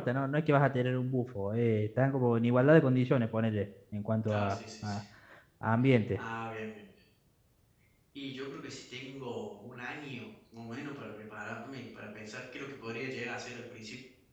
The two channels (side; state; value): both; identical; correlation 1.00